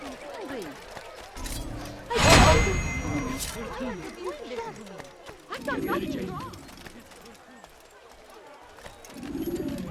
and hungry. I've done nothing wrong.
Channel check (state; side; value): identical; both; correlation 1.00